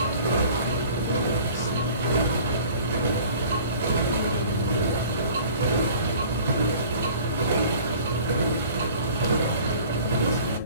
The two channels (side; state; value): both; inverted; correlation -0.48